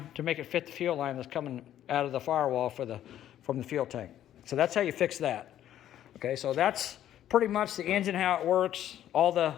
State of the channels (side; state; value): right; quieter; 11.6 dB